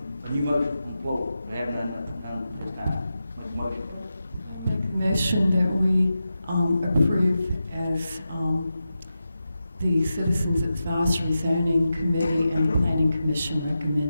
a new motion, whoa, we haven't done this time. Make a motion. Make a motion that we approve as the Citizens Advisory Zoning Committee and the Planning Commission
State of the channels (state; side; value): inverted; both; correlation -0.91